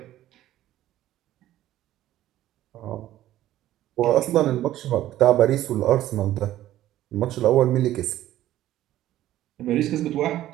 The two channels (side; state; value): left; quieter; 13.8 dB